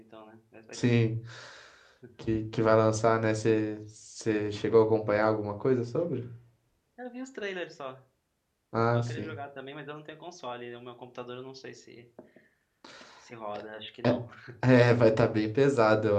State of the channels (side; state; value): both; identical; correlation 1.00